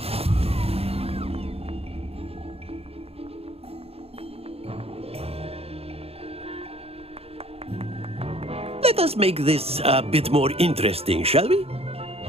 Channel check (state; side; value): late; left; 0.29 ms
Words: Let us make this a bit more interesting, shall we?